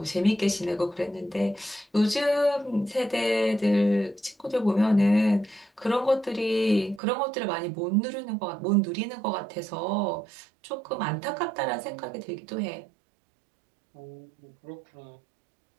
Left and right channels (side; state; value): left; drops out; at 7.0 s